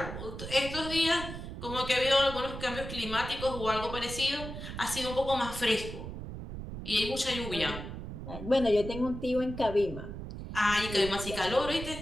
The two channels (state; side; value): noise; right; rumble, 8 dB below the sound